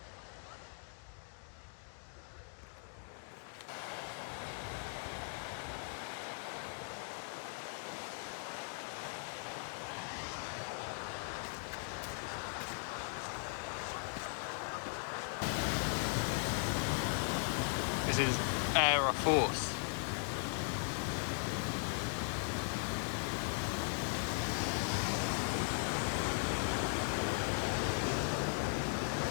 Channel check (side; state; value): right; silent; 52 dB below the other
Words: This is Aira Force.